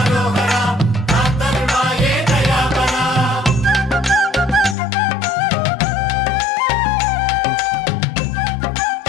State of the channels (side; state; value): right; drops out; at 4.8 s